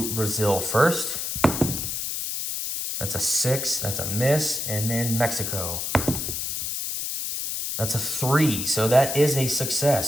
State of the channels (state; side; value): noise; left; hiss, 3 dB below the sound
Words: Brazil first. That's a 6, that's a miss, and then Mexico. That's a 3, so that is a